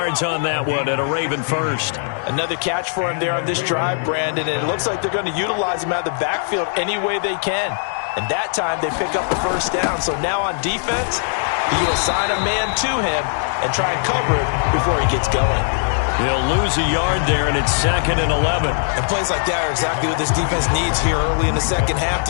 on that one at a Raven first. Another catch for him there on this drive, Brandon, and it looks like they're going to utilize him out of the backfield any way they can. And that time they pick up the first down. So now on defense, you assign a man to him and try and cover it before he gets going. He'll lose a yard there, and it's 2nd and 11. And plays like that are exactly what this defense needs here early in the second half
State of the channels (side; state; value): right; silent; digital silence